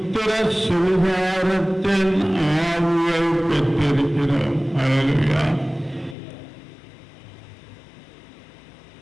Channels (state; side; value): drops out; right; at 6.2 s